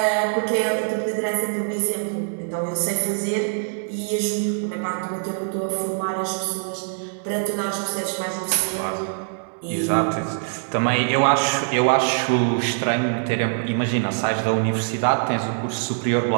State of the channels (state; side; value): silent; left; digital silence